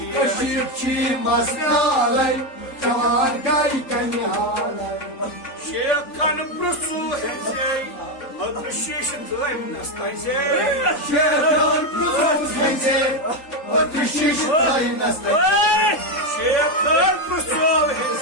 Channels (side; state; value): right; late; 3.8 ms